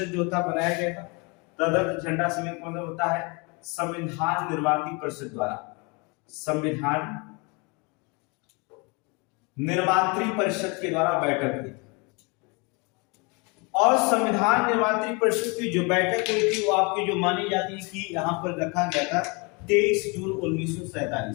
जो होता बनाया गया था। तदर्थ झंडा समिति मतलब होता है संविधान निर्मात्री परिषद द्वारा, संविधान निर्मात्री परिषद के द्वारा बैठक हुई। और संविधान निर्मात्री परिषद की जो बैठक हुई थी वो आपकी जो मानी जाती है कि यहां पर रखा गया था 23 जून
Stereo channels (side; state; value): right; quieter; 30.0 dB